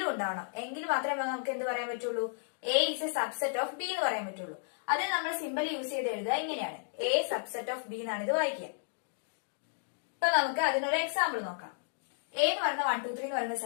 ഉണ്ടാവണം. എങ്കിൽ മാത്രമേ നമുക്ക് എന്ത് പറയാൻ പറ്റുള്ളൂ, A is a subset of B എന്ന് പറയാൻ പറ്റുള്ളൂ. അത് നമ്മൾ സിമ്പിൾ യൂസ് ചെയ്ത് എഴുതുക ഇങ്ങനെയാണ്, എ സബ്സെറ്റ് ഓഫ് ബി എന്നാണ് ഇത് വായിക്കുക. ഇപ്പൊ നമുക്ക് അതിനൊരു എക്സാമ്പിൾ നോക്കാം. എ എന്ന് പറയുന്ന 1, 2, 3 എന്ന് പറയുന്ന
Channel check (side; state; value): right; silent; digital silence